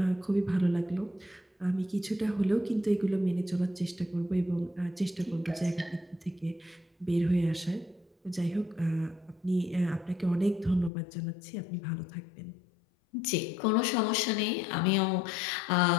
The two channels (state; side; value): drops out; right; at 10.9 s